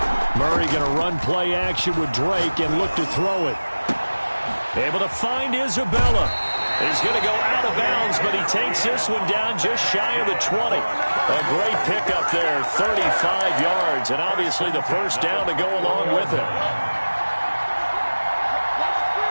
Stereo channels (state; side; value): inverted; both; correlation -1.00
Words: Murray going to run play action with Drake and look to throw it. Able to find Isabella. He's going to go out of bounds, but he takes this one down just shy of the 20. A great pickup there, 35 yards, and obviously the first down to go along with it.